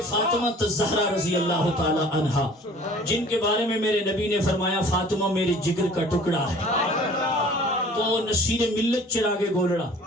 فاطمہ الزہرا رضی اللہ تعالی عنہا، جن کے بارے میں میرے نبی نے فرمایا فاطمہ میرے جگر کا ٹکڑا ہے، تو نصیر ملت چراغ گولڑا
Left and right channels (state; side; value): normal; both; correlation 0.49